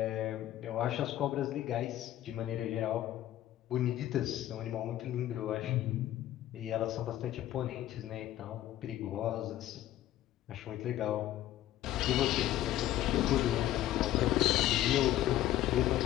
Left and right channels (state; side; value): quieter; right; 13.5 dB